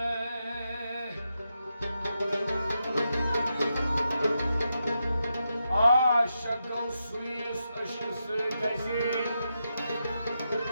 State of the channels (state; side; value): inverted; both; correlation -0.86